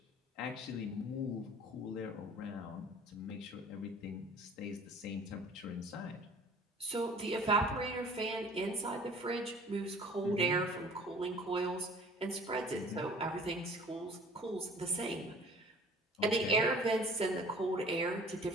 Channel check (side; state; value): both; normal; correlation 0.49